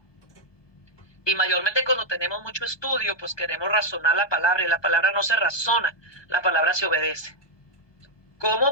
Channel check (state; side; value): late; right; 1.2 ms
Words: Y mayormente cuando tenemos mucho estudio, pues queremos razonar la palabra, y la palabra no se razona, la palabra se obedece.